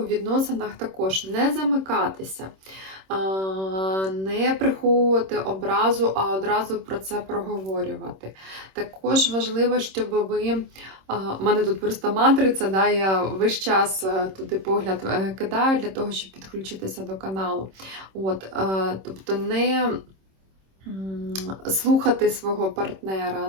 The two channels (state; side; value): late; left; 26 ms